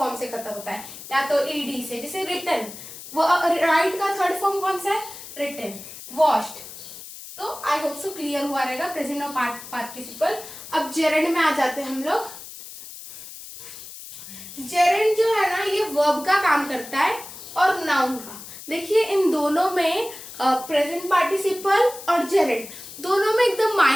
से खत्म होता है, या तो ईडी से। जैसे रिटन, वो राइट का थर्ड फॉर्म कौन सा है? रिटन। वॉश्ड। तो आई होप सो क्लियर हुआ रहेगा प्रेजेंट और पार्टिसिपल। अब जेरेंड में आ जाते हैं हम लोग। जेरेंड जो है ना, ये वर्ब का काम करता है और नाउन का। देखिए इन दोनों में प्रेजेंट पार्टिसिपल और जेरेंड दोनों में एकदम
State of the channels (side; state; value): left; noise; hiss, 14 dB below the sound